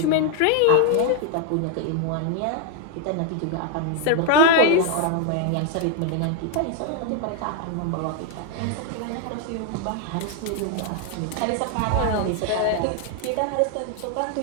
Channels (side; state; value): both; different; correlation 0.00